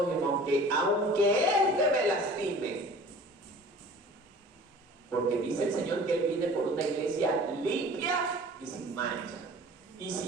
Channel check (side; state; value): both; normal; correlation 0.45